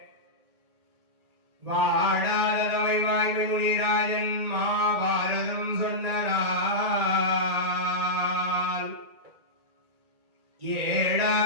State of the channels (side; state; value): left; late; 1.9 ms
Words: வாடாதவை வாய்மை முனிராஜன் மாபாரதம் சொன்னால்